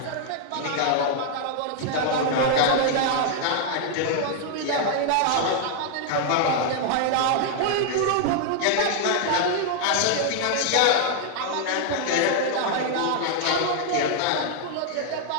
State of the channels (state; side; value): different; both; correlation 0.00